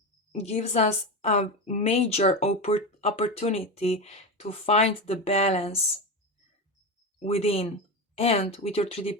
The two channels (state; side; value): normal; both; correlation 0.18